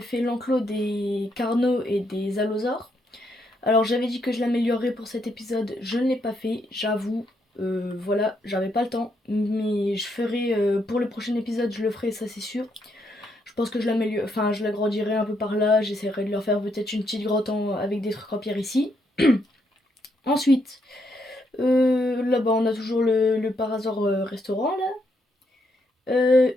fait l'enclos des carnaux et des allosaures. Alors j'avais dit que je l'améliorerais pour cet épisode, je ne l'ai pas fait, j'avoue. Voilà, j'avais pas le temps, mais je ferai pour le prochain épisode, je le ferai, ça c'est sûr. Je pense que je l'améliore, enfin je l'agrandirai un peu par là, j'essaierai de leur faire peut-être une petite grotte avec des trucs en pierre ici. Ensuite, là-bas on a toujours le par hasard restaurant là.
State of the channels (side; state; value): both; normal; correlation 0.76